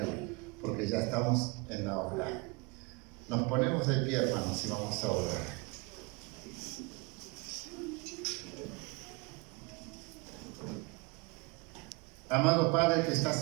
porque ya estamos en la hora. Nos ponemos de pie, hermanos, y vamos a orar. Amado Padre que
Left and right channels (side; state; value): left; quieter; 28.6 dB